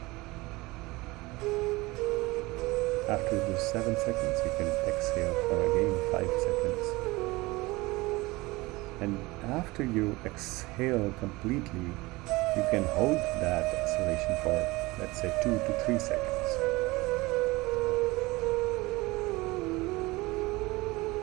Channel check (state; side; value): quieter; left; 21.8 dB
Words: After those 7 seconds, you can exhale for again 5 seconds. And after you exhale completely, you can hold that exhalation for, let's say, 2 to 3 seconds.